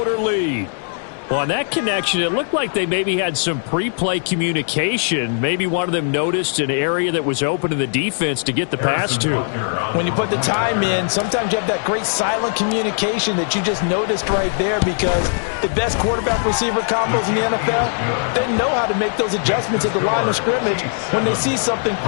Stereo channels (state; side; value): silent; right; digital silence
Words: lead. Well, on that connection, it looked like they maybe had some pre-play communication. Maybe one of them noticed an area that was open to the defense to get the pass to. When you put the time in, sometimes you have that great silent communication that you just noticed right there, because the best quarterback-receiver combos in the NFL, they know how to make those adjustments at the line of scrimmage when they see something